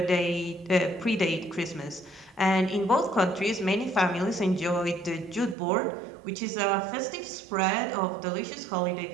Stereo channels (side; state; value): left; drops out; at 5.6 s